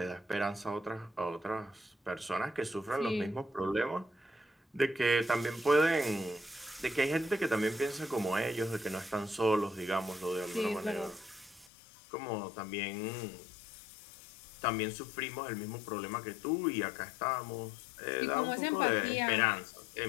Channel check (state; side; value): drops out; right; at 11.7 s